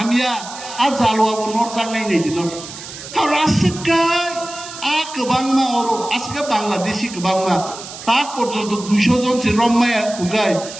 आ जालुआ को नोट जानाय नहीं दिनो रासकाय आ गोबांमा अरो आसका बांग्लादेशी गोबांमा ता पर्यंत 200 जन से रम्माया खुगाय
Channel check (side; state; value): right; noise; hiss, 13 dB below the sound